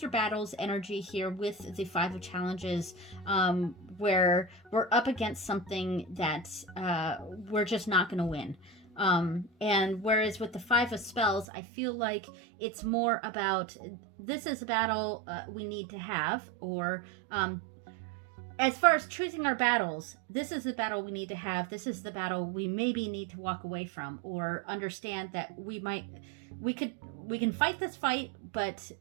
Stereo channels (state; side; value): drops out; left; at 11.5 s